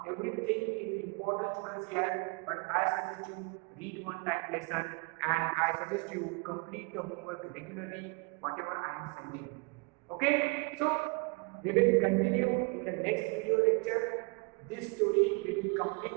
Everything is important, students, here, but I suggest you read one time lesson, and I suggest you complete the homework regularly, whatever I am sending. Okay, so we will continue in the next video lecture. This story we will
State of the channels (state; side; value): quieter; left; 31.3 dB